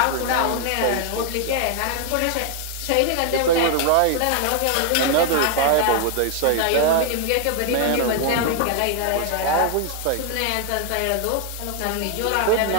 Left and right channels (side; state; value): both; different; correlation 0.00